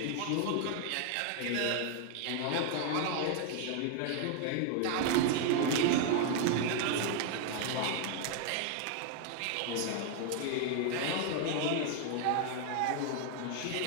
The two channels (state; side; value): different; both; correlation 0.00